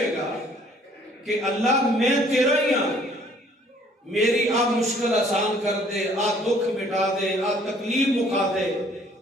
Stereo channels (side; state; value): both; normal; correlation 0.59